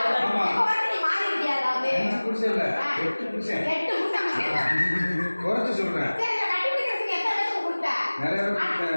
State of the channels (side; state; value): both; inverted; correlation -1.00